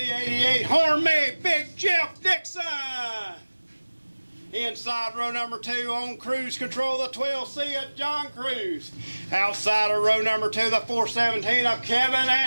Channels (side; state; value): both; inverted; correlation -1.00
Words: 88 Horn-made Big Jeff Dixon. Inside row number 2 on cruise control, the 12C of John Cruz. Outside of row number 2, the 417 of Kevin